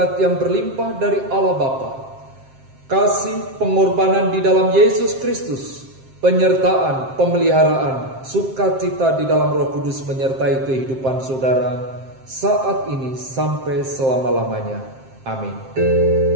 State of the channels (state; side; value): late; left; 7.6 ms